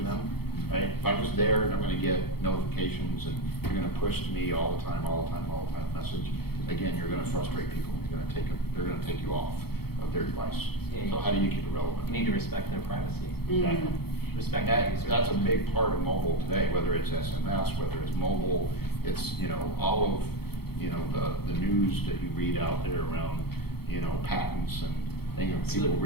them, right? If I'm just there and I'm going to get notifications and you're going to push to me all the time message, again, you're going to frustrate people. They're going to take you off of their device. Yeah, So how do you keep it relevant? You need to respect their privacy. Exactly. Respect That's a big part of mobile today, whether it's SMS, whether it's mobile, it's, all of, the news that you read out there around, patents and things, people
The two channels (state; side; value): late; right; 0.96 ms